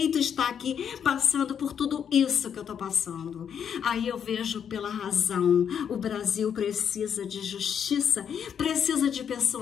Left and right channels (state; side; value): quieter; right; 8.1 dB